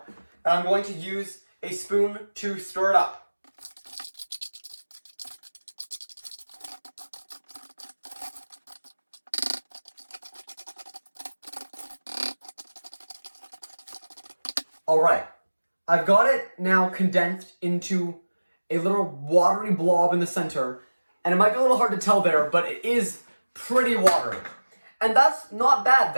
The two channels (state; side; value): inverted; both; correlation -1.00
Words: and I'm going to use a spoon to stir it up. All right, I've got it now condensed into a little watery blob in the center, and it might be a little hard to tell there, but it is pretty watery. And that's not bad